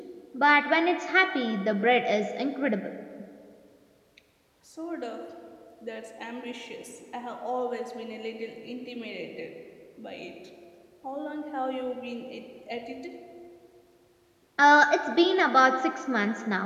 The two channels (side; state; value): both; identical; correlation 1.00